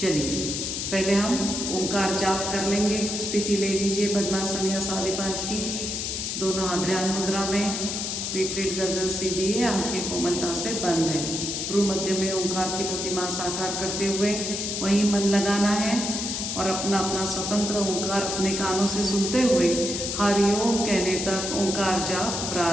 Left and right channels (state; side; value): noise; left; hiss, 3 dB below the sound